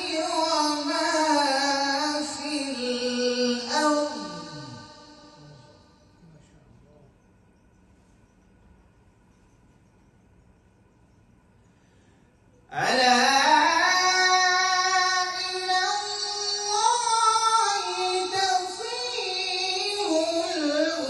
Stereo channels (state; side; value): identical; both; correlation 1.00